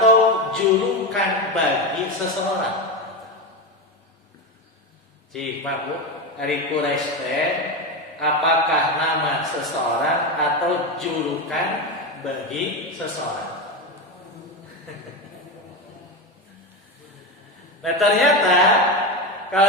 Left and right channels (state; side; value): normal; both; correlation 0.17